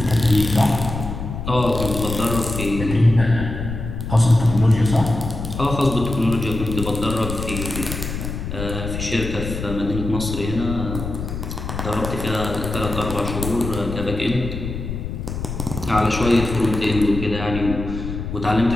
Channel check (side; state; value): left; noise; rumble, 6 dB below the sound